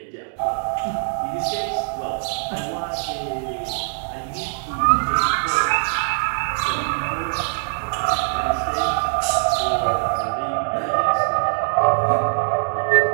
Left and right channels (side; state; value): left; silent; digital silence